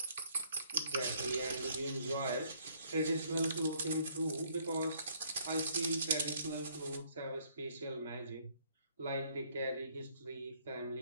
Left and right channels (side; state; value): both; inverted; correlation -0.65